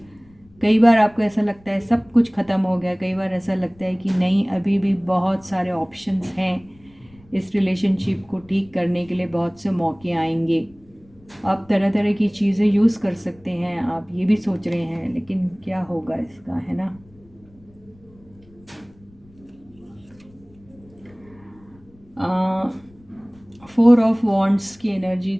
कई बार आपको ऐसा लगता है सब कुछ ख़त्म हो गया, कई बार ऐसा लगता है कि नहीं, अभी भी बहुत सारे ऑप्शंस हैं। इस रिलेशनशिप को ठीक करने के लिए बहुत से मौके आएंगे। आप तरह तरह की चीज़ें यूज़ कर सकते हैं, आप ये भी सोच रहे हैं, लेकिन क्या होगा इसका, है ना। फोर ऑफ वॉन्ड्स की एनर्जी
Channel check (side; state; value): left; noise; rumble, 28 dB below the sound